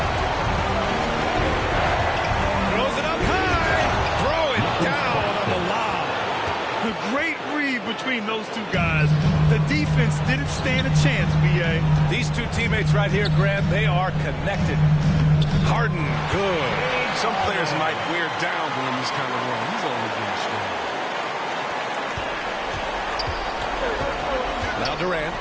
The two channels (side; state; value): both; identical; correlation 1.00